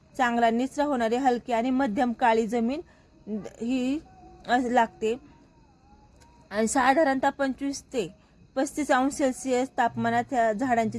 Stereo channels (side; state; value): both; identical; correlation 1.00